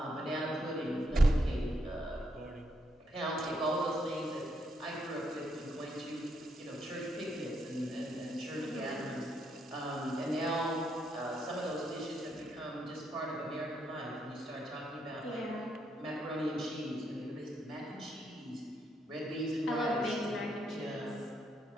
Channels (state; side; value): normal; both; correlation 0.77